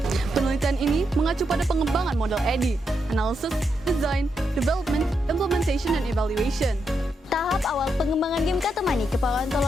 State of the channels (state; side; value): normal; both; correlation 0.82